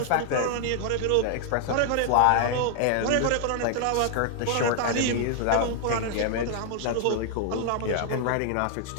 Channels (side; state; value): both; different; correlation 0.00